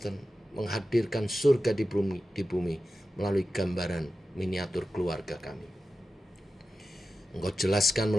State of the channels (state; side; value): normal; both; correlation 0.92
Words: menghadirkan surga di bumi melalui gambaran miniatur keluarga kami. Engkau jelaskan